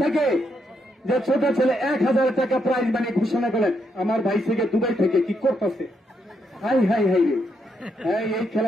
থেকে, যে ছোট ছেলে 1000 টাকা প্রাইজ মানি ঘোষণা করলেন। আমার ভাই থেকে দুবাই থেকে কি করতেছে, হাই হাই হাই রে, এই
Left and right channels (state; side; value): normal; both; correlation 0.78